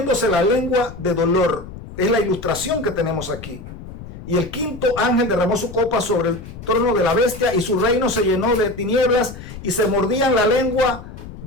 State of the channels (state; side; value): noise; left; rumble, 13 dB below the sound